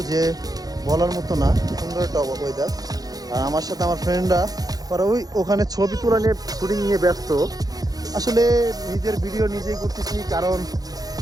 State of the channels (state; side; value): late; left; 0.18 ms